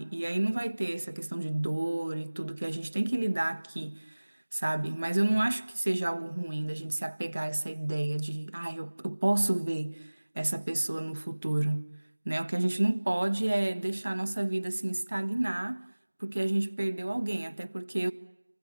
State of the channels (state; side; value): inverted; both; correlation -1.00